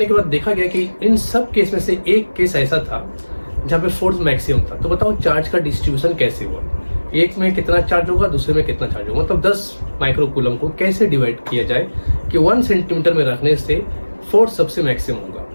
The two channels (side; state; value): both; inverted; correlation -1.00